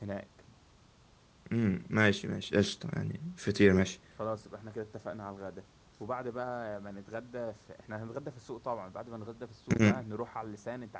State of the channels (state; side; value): identical; both; correlation 1.00